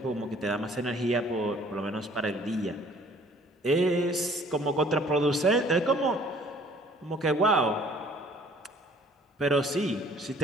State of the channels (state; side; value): normal; both; correlation 0.55